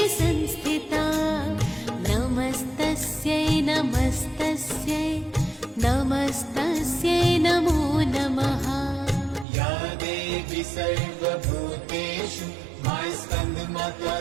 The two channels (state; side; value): drops out; left; at 9.5 s